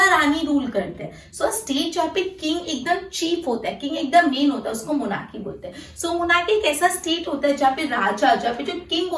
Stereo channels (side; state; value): both; identical; correlation 1.00